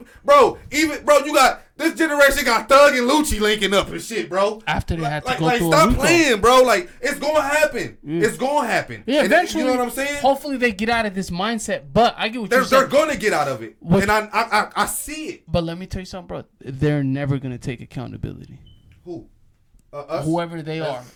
you got this generation got Thug and Lucci linking up and shit, bro. After they had to go through stop playing, bro. Like, it's gonna happen. It's gonna happen. Yeah, eventually. You know what I'm saying? Hopefully they get out of this mindset. But I get what you're saying. They're gonna get out of it, and I see it. But let me tell you something, bro. They're never gonna take accountability. Who? Whoever they are.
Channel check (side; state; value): both; identical; correlation 1.00